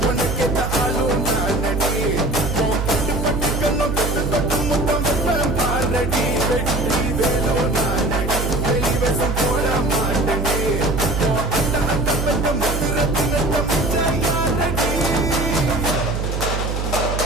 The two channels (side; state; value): right; noise; hum, 2 dB below the sound